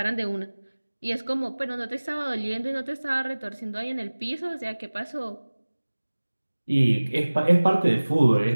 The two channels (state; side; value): inverted; both; correlation -1.00